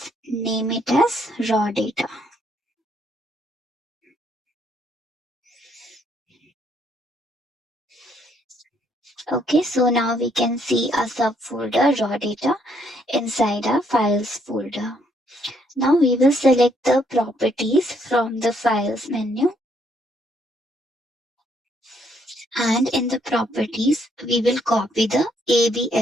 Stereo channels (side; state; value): both; normal; correlation 0.70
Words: name it as raw data. Okay, so now we can see a subfolder raw data inside our files folder. Now we will select the properties from the files menu. And in the properties, we will copy the